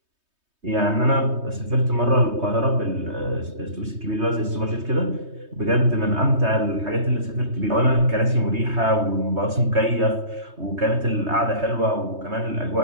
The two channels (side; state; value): left; late; 3.2 ms